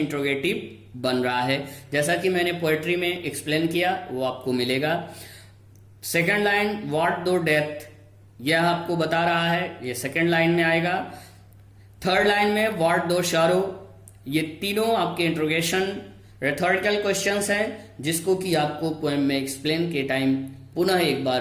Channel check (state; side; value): identical; both; correlation 1.00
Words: बन रहा है, जैसा कि मैंने पोएट्री में एक्सप्लेन किया वो आपको मिलेगा। Second line what though death, यह आपको बता रहा है, ये सेकंड लाइन में आएगा। थर्ड लाइन में व्हाट दो शारो, ये तीनों आपके इंट्रोगेशन रेथोरिकल क्वेश्चंस हैं, जिसको कि आपको पोएम में एक्सप्लेन के टाइम पुनः एक